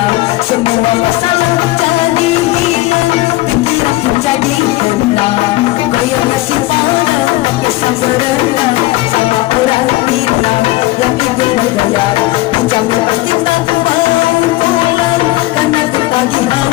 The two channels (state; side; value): quieter; right; 18.8 dB